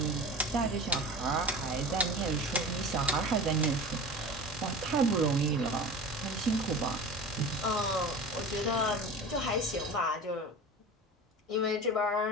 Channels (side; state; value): both; normal; correlation 0.34